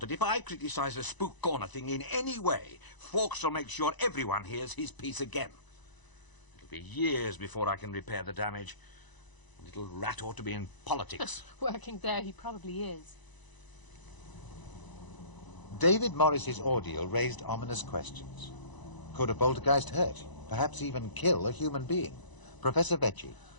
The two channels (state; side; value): late; right; 1.0 ms